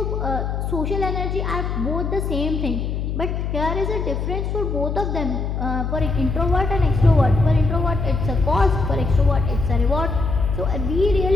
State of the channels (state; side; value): noise; left; hum, 2 dB below the sound